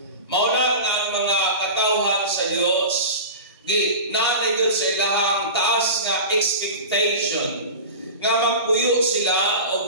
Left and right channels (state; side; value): inverted; both; correlation -0.31